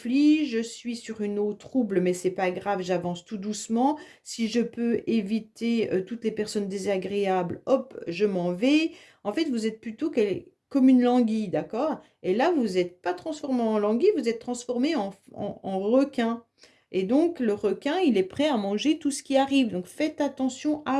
je suis sur une eau trouble, mais c'est pas grave, j'avance tout doucement. Si je peux éviter toutes les personnes désagréables, hop, je m'en vais. En fait, vous êtes plutôt comme une languille, d'accord? Et là, vous n'êtes pas transformé en languille, vous êtes transformé en requin. Et donc, le requin, il est prêt à manger tout ce qui arrive. Donc, faites attention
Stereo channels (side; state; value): both; identical; correlation 1.00